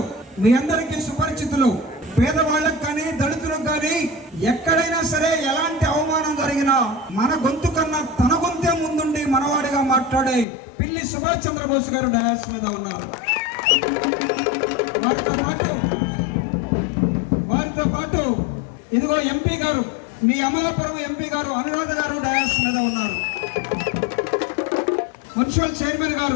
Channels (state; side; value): drops out; right; at 10.5 s